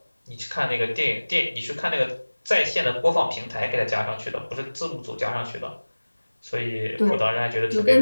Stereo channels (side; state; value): both; inverted; correlation -1.00